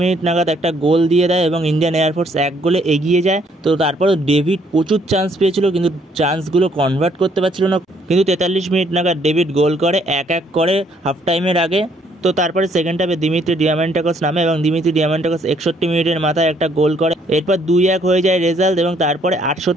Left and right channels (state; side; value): normal; both; correlation 0.67